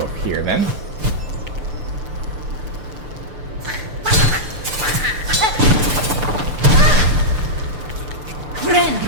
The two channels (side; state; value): left; late; 6.8 ms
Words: up here then. Friend.